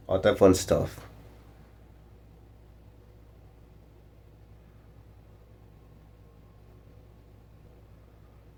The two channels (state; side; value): identical; both; correlation 1.00